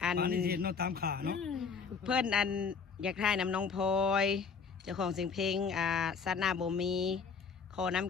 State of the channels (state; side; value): quieter; right; 5.7 dB